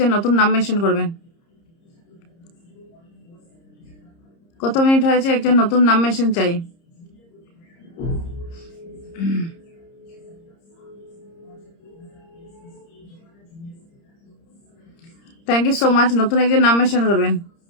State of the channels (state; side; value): late; right; 30 ms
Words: নতুন নাম মেনশন করবেন। কত মিনিট হয়েছে? একজন নতুন নাম মেনশন চাই। Thank you so much. নতুন একজন নাম মেনশন করবেন।